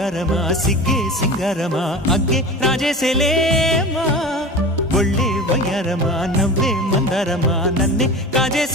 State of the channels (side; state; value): both; normal; correlation 0.33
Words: సిగ్గే సింగారమా అగ్గే రాజేసేలేమా ఒళ్ళే వయ్యారమా నవ్వే మందారమా నన్నే